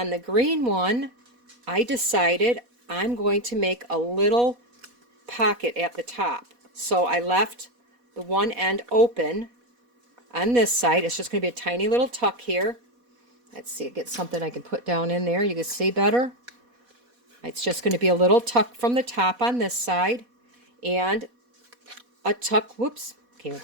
the green one, I decided I'm going to make a little pocket at the top. So I left the one end open on this side. It's just going to be a tiny little tuck here. Let's see, get something I can put down in there. You can see better. It's just going to be a little tuck from the top on this side and a tuck, whoops, came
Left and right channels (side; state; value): left; late; 4.1 ms